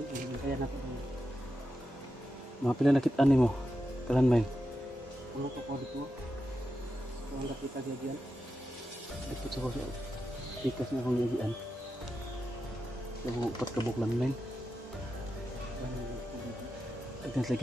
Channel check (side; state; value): both; normal; correlation 0.89